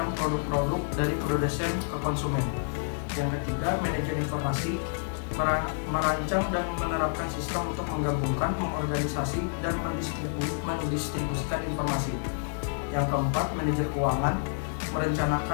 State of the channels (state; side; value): silent; right; 59 dB below the other